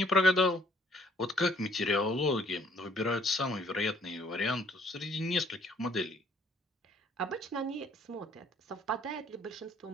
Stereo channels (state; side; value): normal; both; correlation 0.62